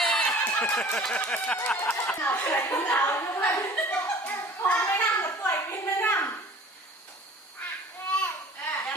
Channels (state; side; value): normal; both; correlation 0.46